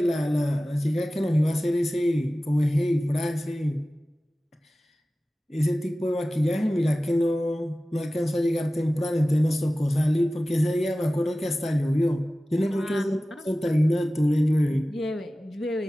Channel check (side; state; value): both; normal; correlation 0.96